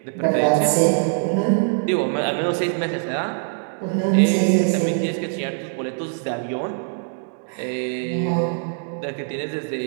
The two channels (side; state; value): left; silent; digital silence